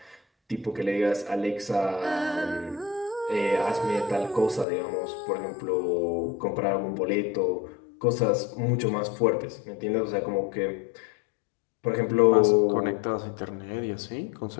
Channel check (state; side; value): drops out; right; at 4.7 s